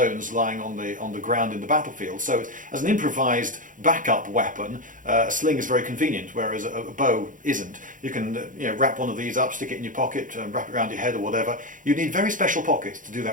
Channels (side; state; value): left; late; 0.38 ms